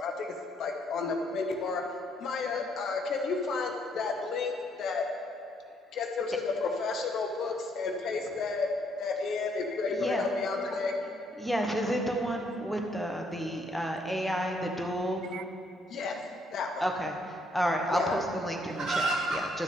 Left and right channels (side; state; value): both; normal; correlation 0.70